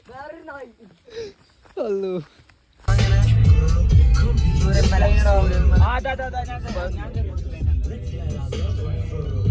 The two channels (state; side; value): identical; both; correlation 1.00